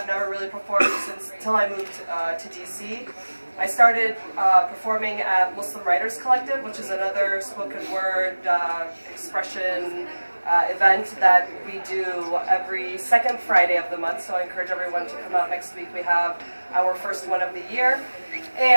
never really performed until I moved to DC. I started performing at Muslim Writers Collective, which is another spoken word expression event that we do every second Friday of the month, so I encourage everyone to come out next week. We have our first one of the year,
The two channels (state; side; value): inverted; both; correlation -1.00